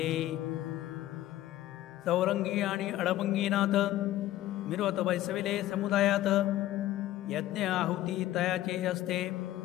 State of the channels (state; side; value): quieter; right; 14.5 dB